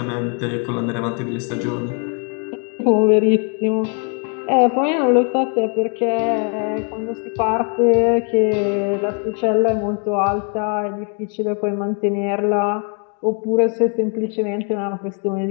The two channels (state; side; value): quieter; right; 38.5 dB